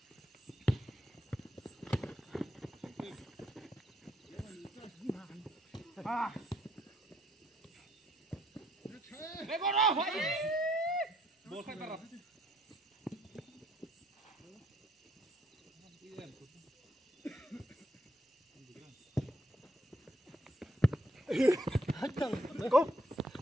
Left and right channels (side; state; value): both; normal; correlation 0.70